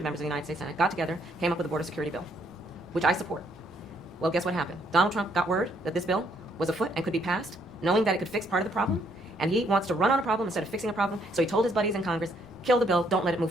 members of the United States Senate, got together, came up with a border security bill, which I support. Well, guess what happened? Donald Trump got word that this bill was afoot and could be passed, knowing that it could fix part of the problem, and he wants to run on a problem instead of fixing a problem, so he told his buddies in Congress, kill the bill, don't let it move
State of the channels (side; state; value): both; normal; correlation 0.69